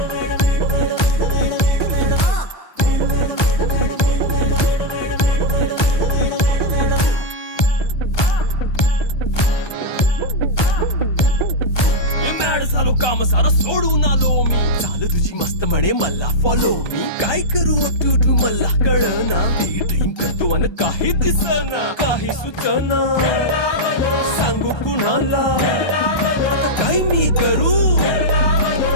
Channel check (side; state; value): right; late; 1.2 ms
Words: झालो काम सारा सोडून आलो मी झालं तुझी मस्त म्हणे मला फॉलो मी काय करू टू मला कळना ती ड्रीम करतो आणि काही दिसना काही सुचना सांगू कुणाला आता काय मी करू